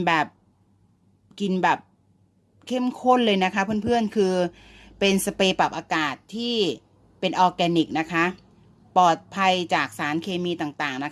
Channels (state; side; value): identical; both; correlation 1.00